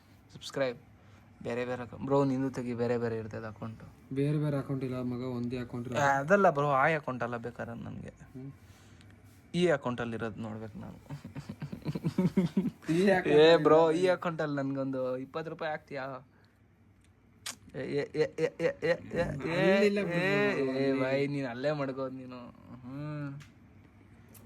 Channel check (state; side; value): identical; both; correlation 1.00